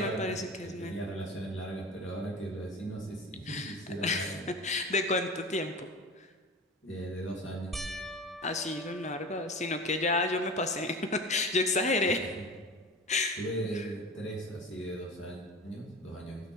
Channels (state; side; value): normal; both; correlation 0.32